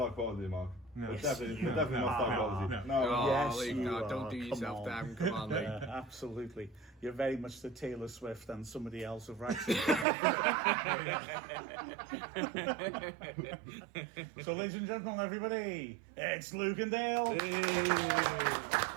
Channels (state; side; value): drops out; left; at 10.1 s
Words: quality, Mark. No. We're definitely not star quality. No. Yes, Luke, you no, are. don't do Come yourself on. down. Come on, Luke. Absolutely. You're very much the Taylor Swift and somebody else of Wrexham. So, ladies and gentlemen, everybody, it's Luke and Dale.